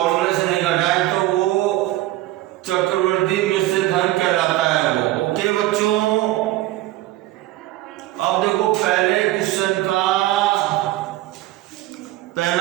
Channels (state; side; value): quieter; left; 16.2 dB